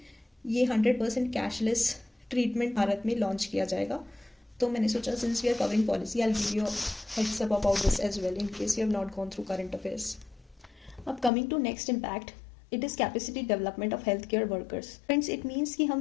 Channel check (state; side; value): drops out; right; at 11.3 s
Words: ये 100% कैशलेस ट्रीटमेंट भारत में लॉन्च किया जाएगा. तो मैंने सोचा since we are covering policy, I will give you heads up about this as well in case you have not gone through current affairs. अब coming to next impact, it is capacity development of health care workers. Friends, it means कि